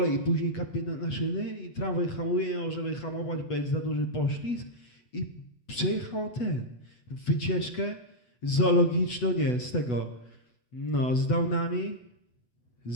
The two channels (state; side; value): late; right; 8.1 ms